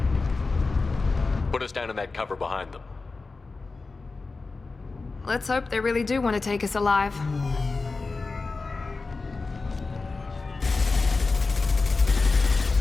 Put us down in that cover behind them. Let's hope they really do want to take us alive.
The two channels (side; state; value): right; quieter; 3.9 dB